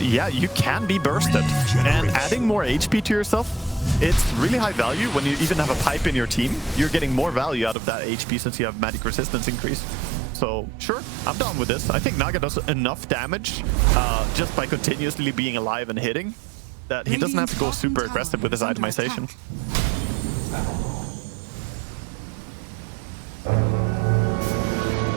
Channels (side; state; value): left; drops out; at 7.8 s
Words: you can be bursted. And adding more HP to yourself, it's really high value. When you even have a pipe in your team, you're getting more value out of that HP since you have magic resistance increase. So, sure, I'm down with this. I think Naga does enough damage just by continuously being alive and hitting that he doesn't have to go super aggressive with his itemization.